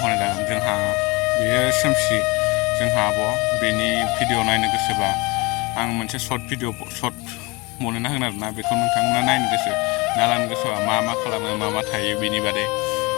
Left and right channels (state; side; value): quieter; right; 25.4 dB